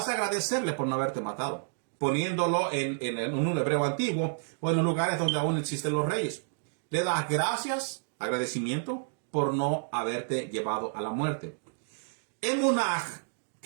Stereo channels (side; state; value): left; silent; digital silence